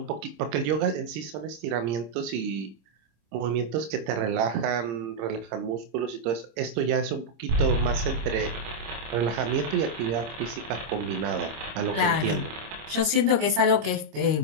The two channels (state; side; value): late; left; 26 ms